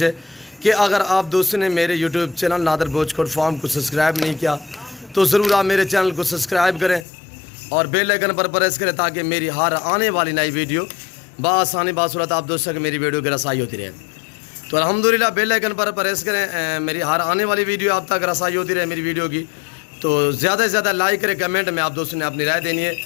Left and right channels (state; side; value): drops out; right; at 7.1 s